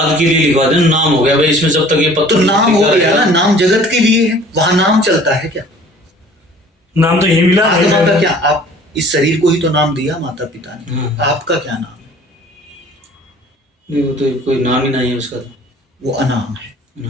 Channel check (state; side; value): normal; both; correlation 0.50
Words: के लिए लिखवा देना, नाम हो गया भाई इसमें, जब तक ये पत्थर, तो नाम हो गया ना, नाम जगत के लिए है, वहां नाम चलता है क्या? नाम तो यही मिला। आत्मा का क्या, आप इस शरीर को ही तो नाम दिया माता पिता ने, आपका क्या नाम है? नहीं, वो तो कोई नाम ही नहीं है उसका, वो अनाम है,